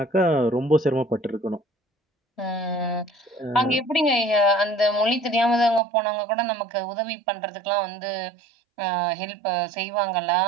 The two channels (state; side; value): drops out; left; at 5.8 s